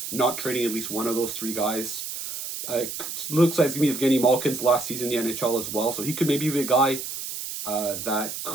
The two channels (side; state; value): right; noise; hiss, 7 dB below the sound